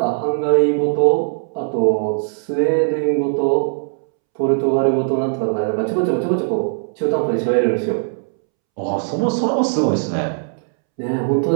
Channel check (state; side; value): silent; left; 66 dB below the other